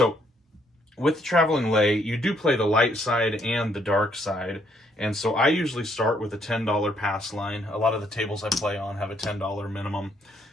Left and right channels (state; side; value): normal; both; correlation 0.70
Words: with the traveling lay, you do play the light side and the dark side, and so I usually start with a $10 pass line. A lot of the tables I play on have a $10 minimum,